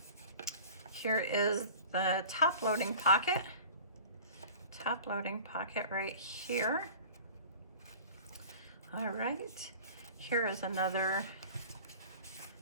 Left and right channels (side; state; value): both; inverted; correlation -0.41